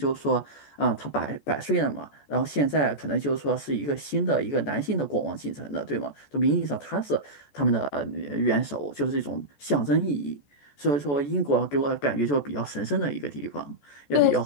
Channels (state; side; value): late; right; 14 ms